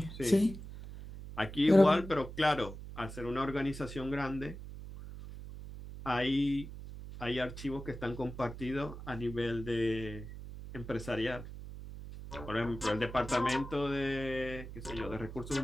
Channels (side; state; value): right; noise; hum, 11 dB below the sound